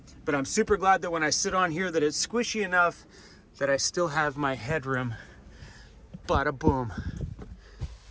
But I'm super glad that when I sit on here that it's squishy enough that I still have my headroom. Bada boom.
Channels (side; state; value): both; identical; correlation 1.00